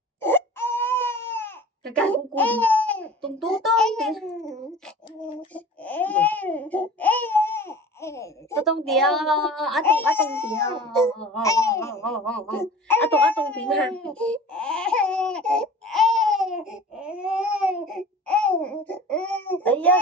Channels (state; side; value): normal; both; correlation 0.41